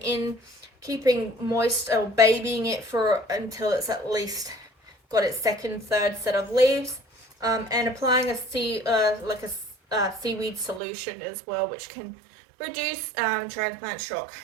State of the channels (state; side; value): drops out; left; at 10.8 s